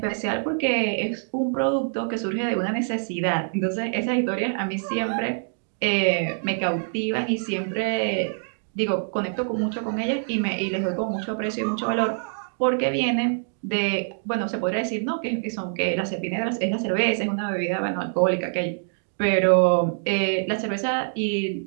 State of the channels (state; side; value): silent; left; digital silence